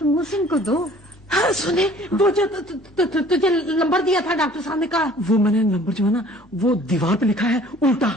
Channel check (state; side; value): normal; both; correlation 0.52